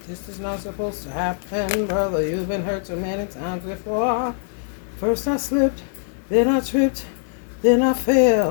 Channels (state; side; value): silent; right; 62 dB below the other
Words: this is not supposed to happen, brother. You've been hurt so many times before. First I slipped, then I tripped, then I